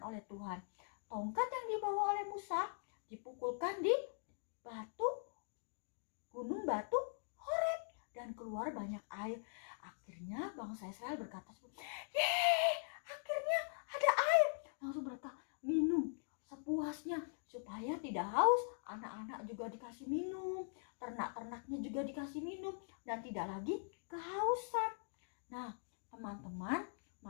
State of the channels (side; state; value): right; silent; digital silence